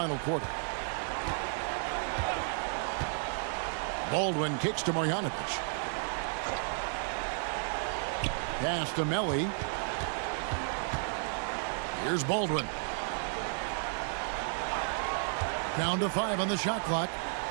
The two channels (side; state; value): left; silent; 56 dB below the other